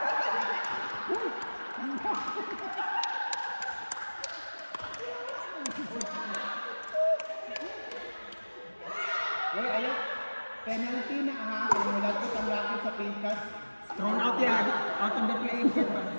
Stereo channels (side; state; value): both; inverted; correlation -1.00